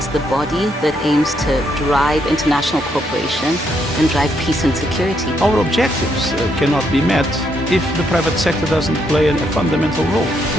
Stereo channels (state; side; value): normal; both; correlation 0.75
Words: the body that aims to drive international cooperation and drive peace and security. Our objectives cannot be met if the private sector doesn't play a fundamental role.